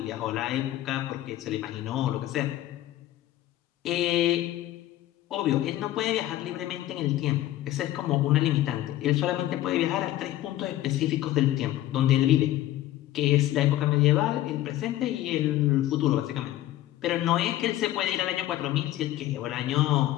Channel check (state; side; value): quieter; right; 14.3 dB